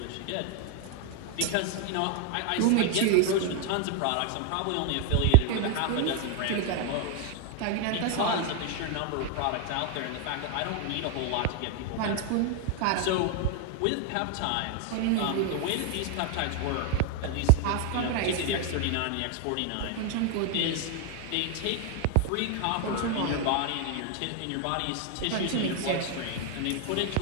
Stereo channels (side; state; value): both; different; correlation 0.00